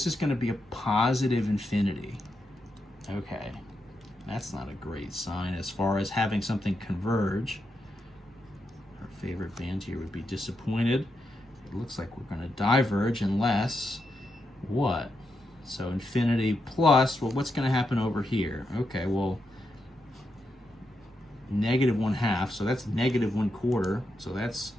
is going to be a positive infinity. Okay, that's not a great sign as far as having something converge. Our favorite band here would be disappointed. It looks like we're going to diverge unless what? So infinity plus, well, what's going to happen over here? Okay, well, -1/2, so that's -1/4, so that's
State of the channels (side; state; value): both; normal; correlation 0.84